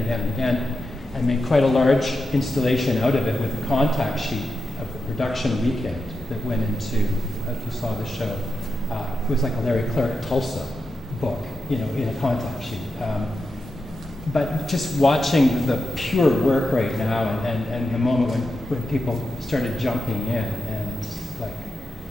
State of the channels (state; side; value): normal; both; correlation 0.88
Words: and again, and made quite a large installation out of it with a contact sheet of the production weekend that went into, if you saw the show, it was like a Larry Clark Tulsa book, in a contact sheet. But just watching the pure work right now, and the moment when people started jumping in, and like,